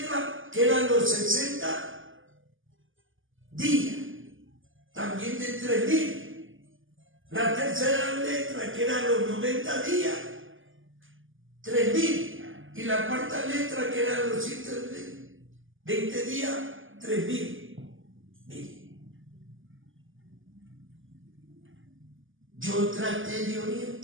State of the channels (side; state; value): left; late; 0.58 ms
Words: que eran los 60 días, también de 3.000. La tercera letra, que eran los 90 días, 3.000. Y la cuarta letra, que eran los 120 días, 3.000. Mire, yo traté de